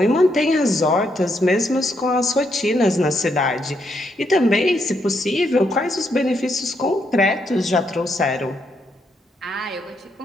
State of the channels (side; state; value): both; normal; correlation 0.77